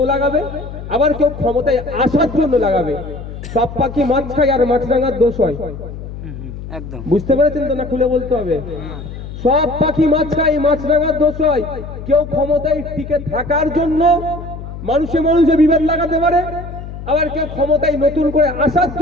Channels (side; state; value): left; noise; hum, 10 dB below the sound